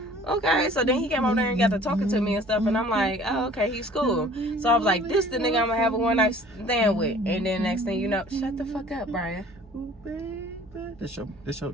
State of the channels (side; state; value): both; normal; correlation 0.50